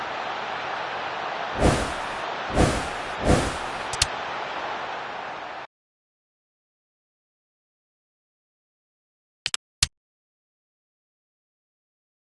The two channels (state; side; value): identical; both; correlation 1.00